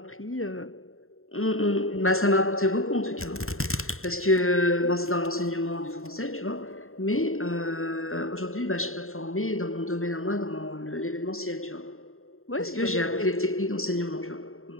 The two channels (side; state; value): right; late; 0.61 ms